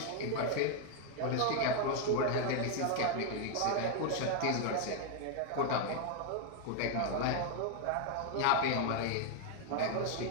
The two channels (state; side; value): different; both; correlation 0.00